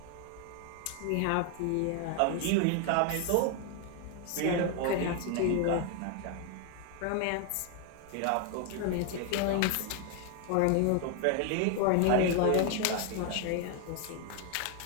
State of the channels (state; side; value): different; both; correlation 0.01